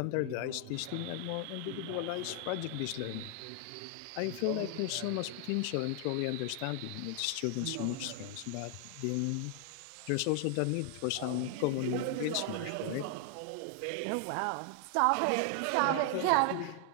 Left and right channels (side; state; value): both; different; correlation 0.00